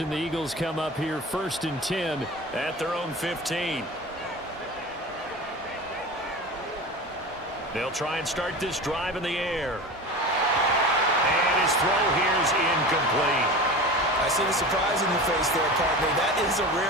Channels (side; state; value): both; normal; correlation 0.32